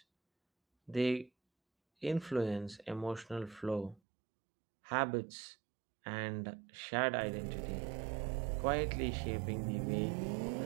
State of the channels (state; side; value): drops out; left; at 4.0 s